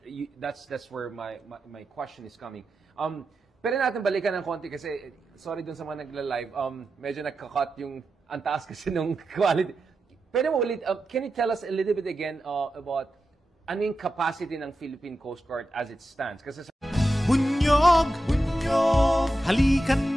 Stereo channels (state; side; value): normal; both; correlation 0.90